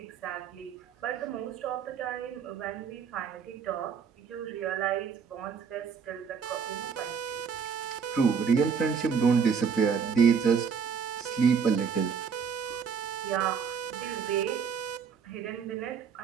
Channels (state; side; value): quieter; left; 6.4 dB